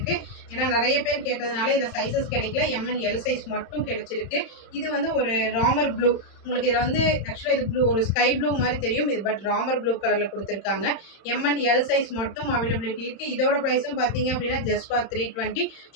ஏன்னா நிறைய பேர் கேட்டதுனால இதில் சைஸஸ் கிடைக்கல. M and L சைஸ் மட்டும் கிடைச்சிருக்கு. இது வந்து ஒரு ராமர் ப்ளூ. உங்களுக்கு இதில் வந்து ஆக்சுவலாக இது ப்ளூ, ஒரு ஸ்கை ப்ளூ மாதிரி தெரியும் இது, பட் ராமர் ப்ளூ கலரில் கொடுத்துருக்காங்க. M and L சைஸ் மட்டும் அவைலபிலிட்டி இருக்குது. இதோட ப்ரைஸும் பார்த்தீங்க அப்படின்னா just for 320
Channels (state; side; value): late; right; 31 ms